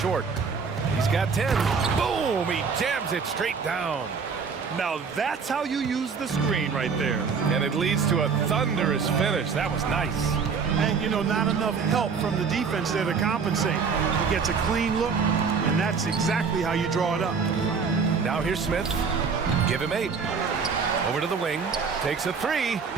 He's got 10. Boom! He jams it straight down. Now that's how you use the screen right there. And it leads to a thunderous finish. That was nice. And, you know, not enough help from the defense there to compensate. He gets a clean look, and that's exactly how you draw it up. Now here's Smith. Give him 8. Over to the wing. Takes a 3.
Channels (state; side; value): quieter; left; 5.5 dB